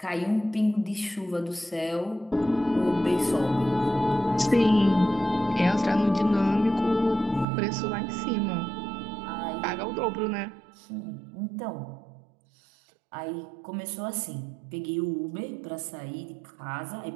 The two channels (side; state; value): left; drops out; at 7.5 s